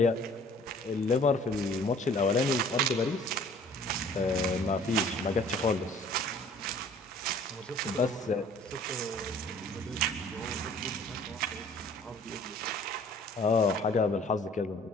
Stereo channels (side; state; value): both; normal; correlation 0.52